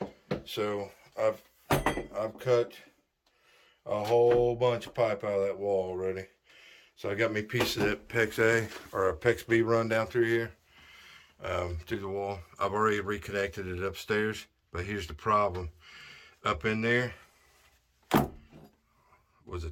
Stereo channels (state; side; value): identical; both; correlation 1.00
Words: So I've cut a whole bunch of pipe out of that wall already. So I got me a piece of that PEX A or a PEX B run down through here through the wall. I've already reconnected it upstairs, but here's the problem. Up in there was a